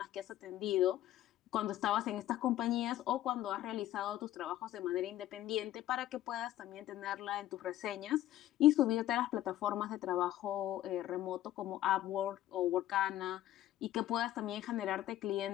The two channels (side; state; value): right; quieter; 13.6 dB